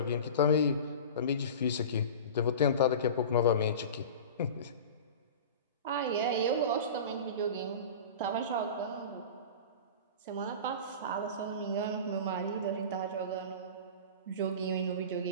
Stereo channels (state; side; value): inverted; both; correlation -0.33